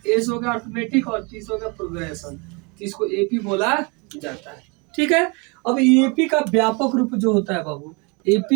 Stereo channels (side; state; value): left; quieter; 30.3 dB